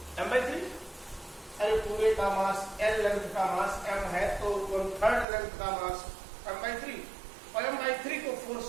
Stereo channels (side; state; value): left; drops out; at 5.2 s